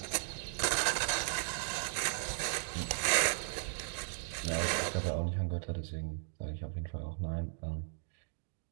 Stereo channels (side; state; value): left; silent; digital silence